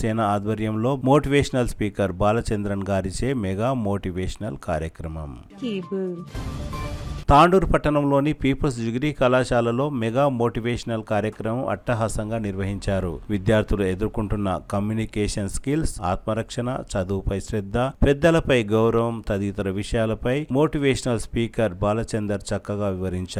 ఆధ్వర్యంలో motivational speaker Balachandran గారిచే mega motivational కార్యక్రమం. కేబుల్. తాండూరు పట్టణంలోని పీపుల్స్ డిగ్రీ కళాశాలలో మెగా మోటివేషనల్ కార్యక్రమం అట్టహాసంగా నిర్వహించారు. విద్యార్థులు ఎదుర్కొంటున్న కమ్యూనికేషన్ స్కిల్స్, ఆత్మరక్షణ, చదువుపై శ్రద్ధ, పెద్దలపై గౌరవం తదితర విషయాలపై మోటివేషనల్ స్పీకర్ బాలచందర్ చక్కగా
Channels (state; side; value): identical; both; correlation 1.00